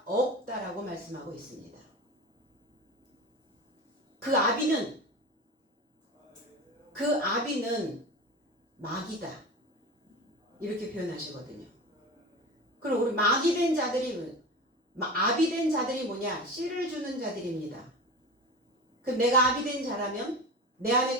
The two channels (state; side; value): normal; both; correlation 0.29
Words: 없다라고 말씀하고 있습니다. 그 아비는 마귀다, 이렇게 표현하시거든요. 그럼 우리 아비 된 자들이 뭐냐? 씨를 주는 자들입니다. 그럼 내가 아비 된 자라면 내